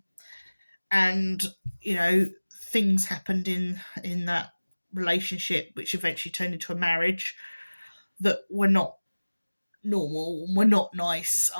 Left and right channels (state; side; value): inverted; both; correlation -1.00